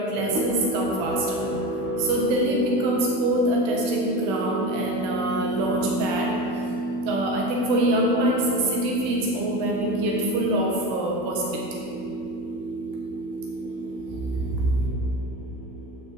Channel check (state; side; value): late; left; 16 ms